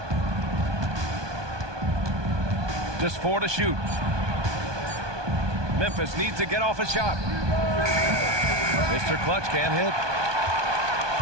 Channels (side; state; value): left; late; 1.2 ms